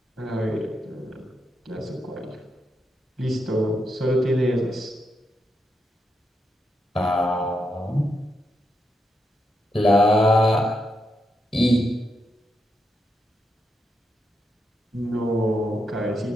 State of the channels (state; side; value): normal; both; correlation 0.83